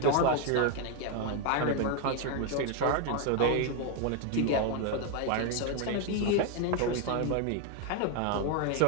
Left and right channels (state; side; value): different; both; correlation 0.01